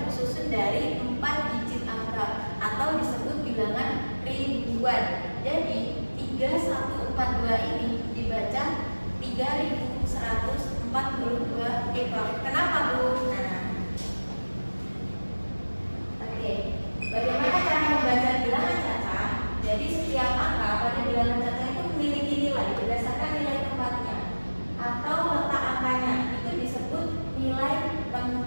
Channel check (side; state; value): both; inverted; correlation -1.00